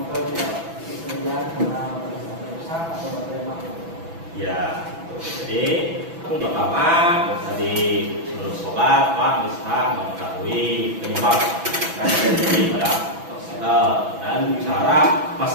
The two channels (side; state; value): left; late; 6.1 ms